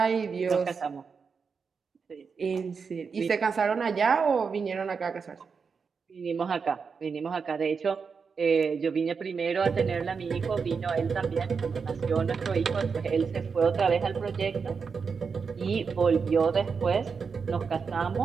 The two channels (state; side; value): quieter; left; 5.5 dB